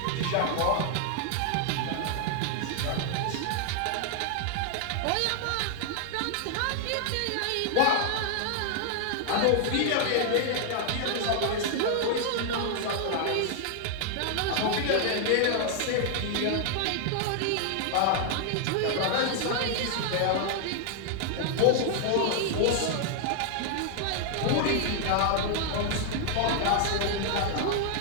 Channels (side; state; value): both; different; correlation 0.00